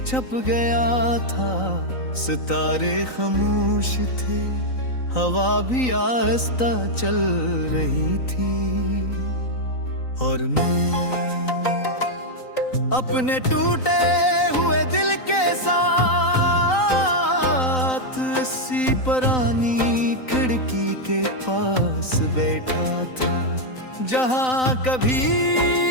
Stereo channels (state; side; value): late; right; 3.9 ms